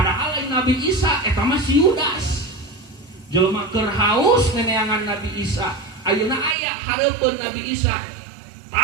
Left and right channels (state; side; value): drops out; left; at 6.6 s